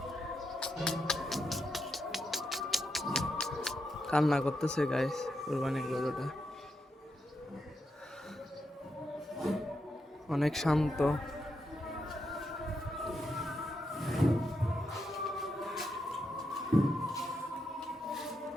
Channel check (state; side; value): normal; both; correlation 0.84